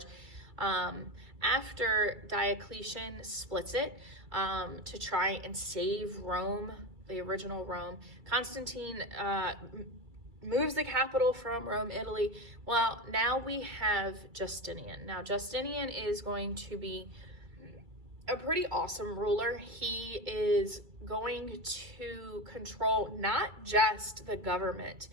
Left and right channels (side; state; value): left; late; 2.3 ms